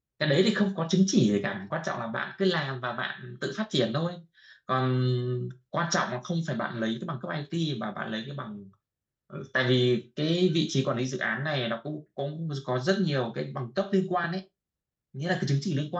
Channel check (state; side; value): identical; both; correlation 1.00